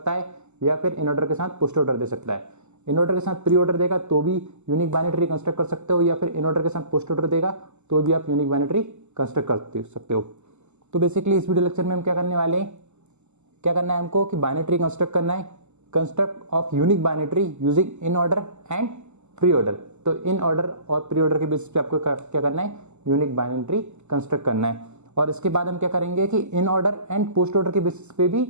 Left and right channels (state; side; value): late; left; 0.83 ms